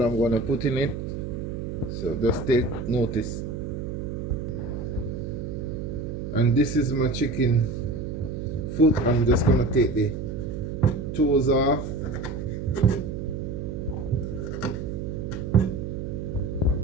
I'm gonna put in it, so just take notice. And this is my chicken foot. I'm just gonna take the toes off.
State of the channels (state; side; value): noise; right; hum, 5 dB below the sound